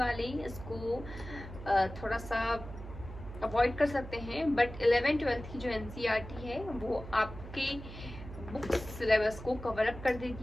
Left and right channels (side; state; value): right; noise; hum, 12 dB below the sound